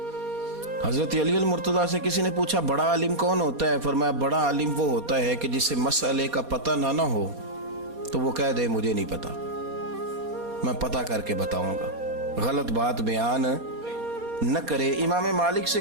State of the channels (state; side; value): late; left; 4.2 ms